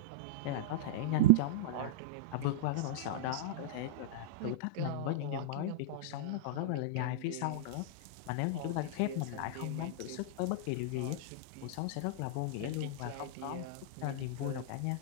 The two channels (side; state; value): both; different; correlation -0.02